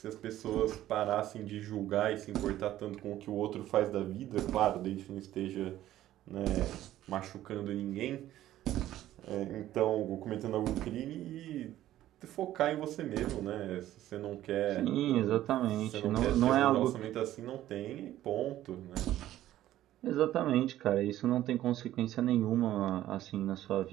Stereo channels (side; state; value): left; quieter; 13.6 dB